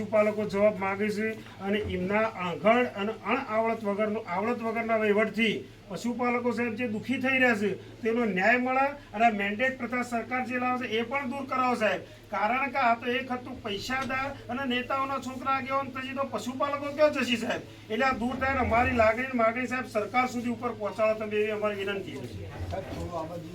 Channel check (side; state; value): both; identical; correlation 1.00